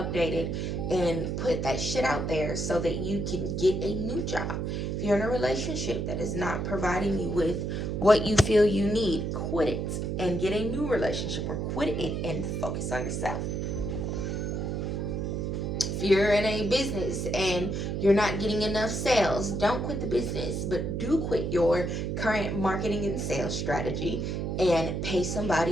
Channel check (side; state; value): right; noise; hum, 2 dB below the sound